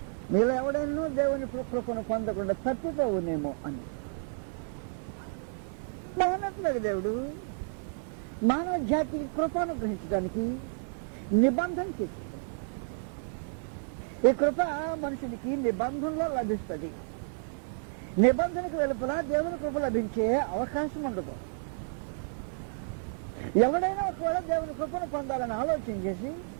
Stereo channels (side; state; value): left; silent; digital silence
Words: మీలో ఎవడైనా దేవుని కృపను పొందకుండా తప్పిపోవునేమో అని మానట్లేదు. దేవుడు మానవ జాతికి కృపను గ్రహించడానికి నిబంధన చేశాడు. ఈ కృప మనుషునికి నిబంధనలో లభిస్తుంది. నిబంధనకు వెలుపల దేవుని కృప లభించే అవకాశం ఉండదు. ఎవడైనా ఒకవేళ దేవుని కృపను పొందాలని ఆలోచన చేసి